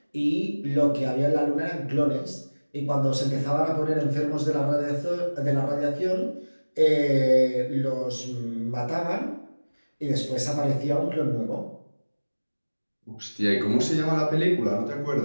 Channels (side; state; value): both; inverted; correlation -1.00